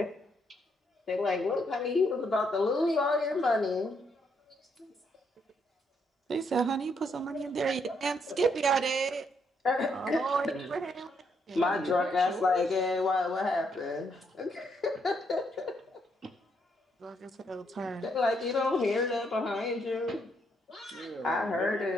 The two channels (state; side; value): normal; both; correlation 0.74